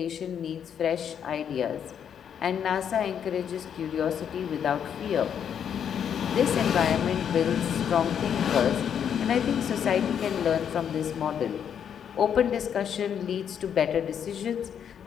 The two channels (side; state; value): right; quieter; 8.4 dB